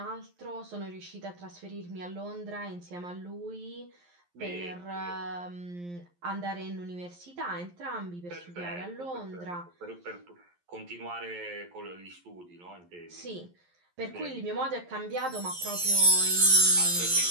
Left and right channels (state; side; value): late; left; 11 ms